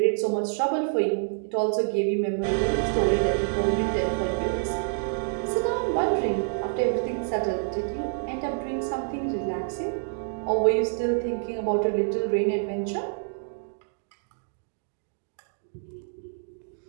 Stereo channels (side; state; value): left; silent; digital silence